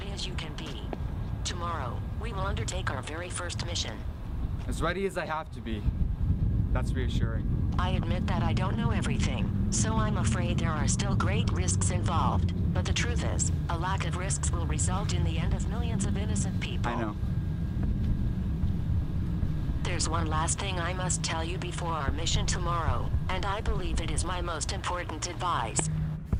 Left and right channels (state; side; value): identical; both; correlation 1.00